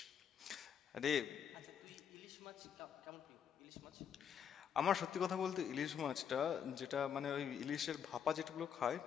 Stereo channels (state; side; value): quieter; right; 8.1 dB